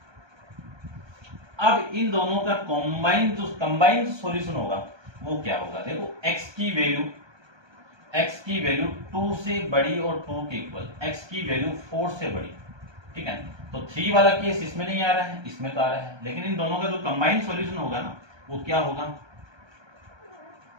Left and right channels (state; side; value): late; left; 1.3 ms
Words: अब इन दोनों का कंबाइंड सॉल्यूशन होगा वो क्या होगा, देखो x की वैल्यू 2 से बड़ी और 2 के इक्वल, x की वैल्यू 4 से बड़ी, ठीक है। तो 3 वाला केस इसमें नहीं आ रहा है, इसमें तो आ रहा है, लेकिन इन दोनों का जो कंबाइंड सॉल्यूशन होगा ना वो क्या होगा,